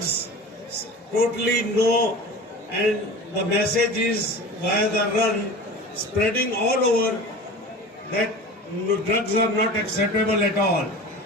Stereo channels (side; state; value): both; normal; correlation 0.36